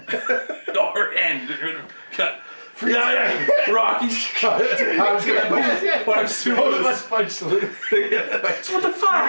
Or end. Cut. Yeah. Rocky. I was gonna Punch Both of us punch salute. What the fuck? I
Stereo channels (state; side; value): inverted; both; correlation -1.00